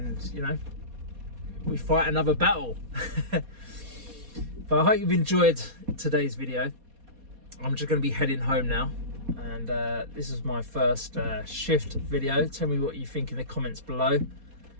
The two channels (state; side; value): late; left; 4.2 ms